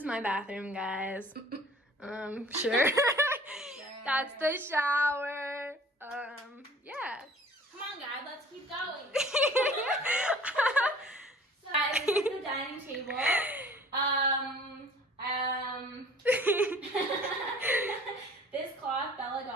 my bathroom, guys. Sure. That's the shower. Yeah. Come on, guys. Let's keep going. So, guys, this is the dining table. This cloth Bella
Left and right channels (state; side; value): normal; both; correlation 0.49